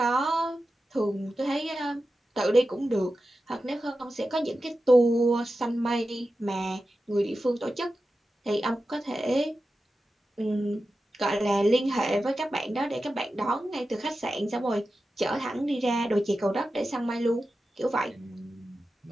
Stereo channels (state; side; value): normal; both; correlation 0.92